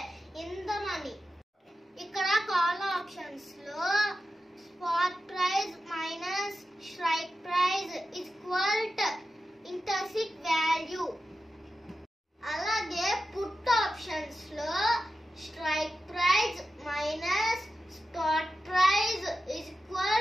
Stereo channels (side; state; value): both; normal; correlation 0.92